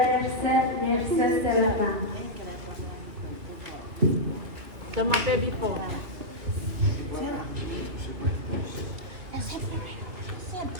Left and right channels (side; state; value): left; late; 2.9 ms